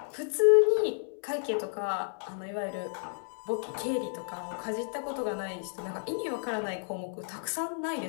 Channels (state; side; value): silent; right; 57 dB below the other